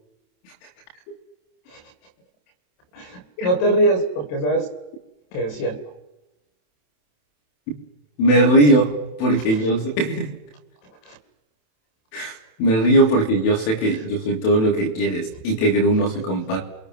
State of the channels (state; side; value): late; right; 27 ms